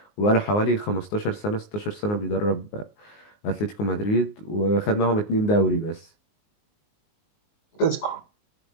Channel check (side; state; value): right; late; 19 ms